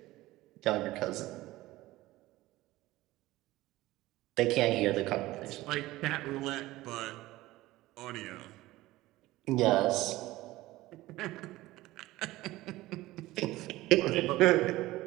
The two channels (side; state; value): left; quieter; 17.7 dB